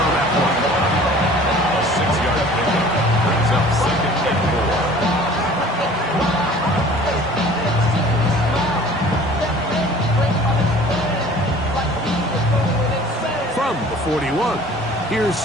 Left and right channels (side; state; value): both; normal; correlation 0.48